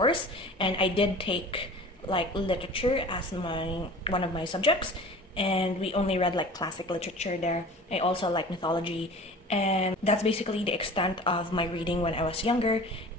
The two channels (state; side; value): normal; both; correlation 0.41